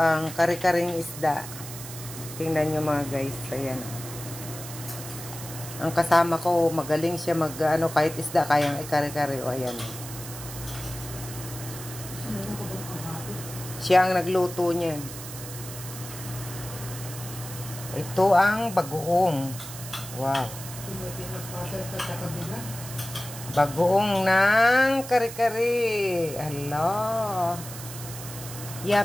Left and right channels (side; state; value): right; noise; hiss, 11 dB below the sound